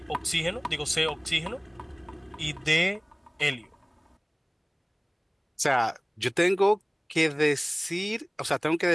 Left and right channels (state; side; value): identical; both; correlation 1.00